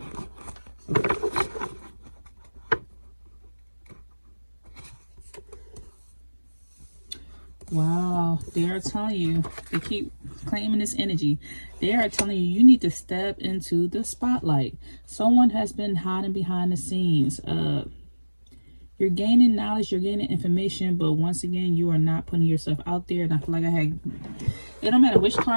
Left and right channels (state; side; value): inverted; both; correlation -1.00